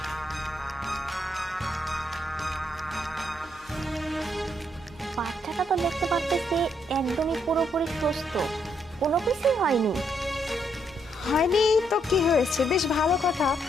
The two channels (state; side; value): normal; both; correlation 0.74